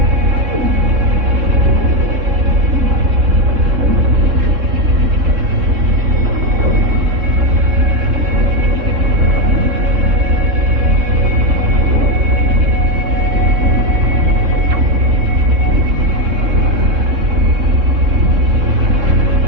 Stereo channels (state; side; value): late; left; 3.7 ms